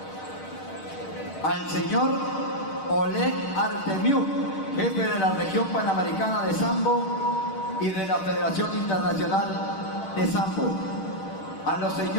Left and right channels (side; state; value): right; late; 6.5 ms